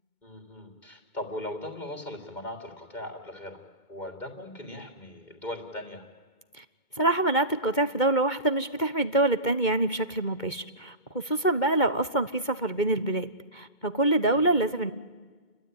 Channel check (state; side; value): late; right; 2.2 ms